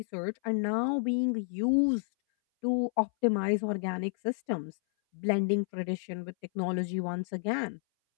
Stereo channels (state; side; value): silent; right; 57 dB below the other